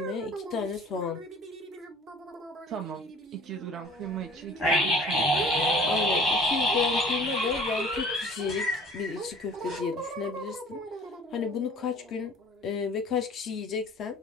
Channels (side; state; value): both; normal; correlation 0.49